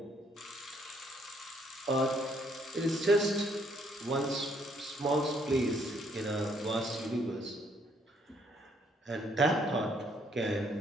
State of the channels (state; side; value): normal; both; correlation 0.68